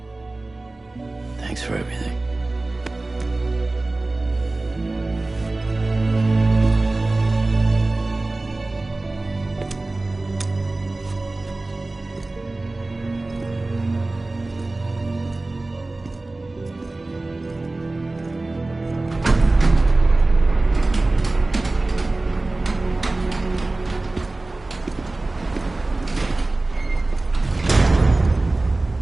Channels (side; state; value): left; quieter; 3.0 dB